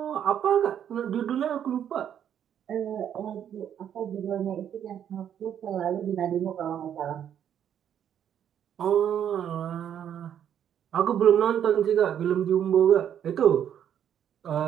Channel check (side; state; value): left; quieter; 9.4 dB